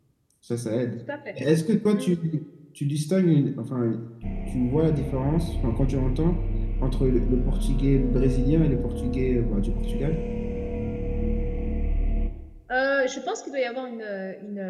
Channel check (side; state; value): both; identical; correlation 1.00